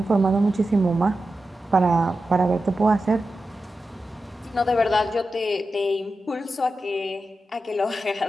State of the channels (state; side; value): normal; both; correlation 0.91